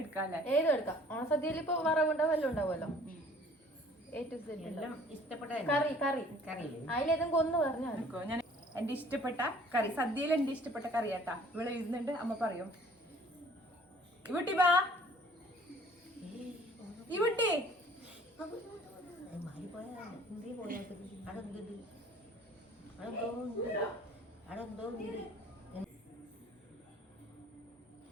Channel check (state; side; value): normal; both; correlation 0.53